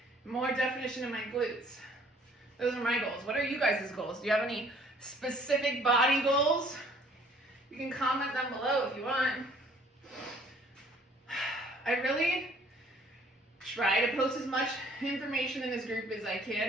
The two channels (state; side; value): normal; both; correlation 0.57